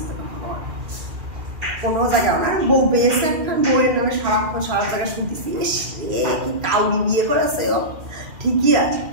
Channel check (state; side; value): late; left; 2.4 ms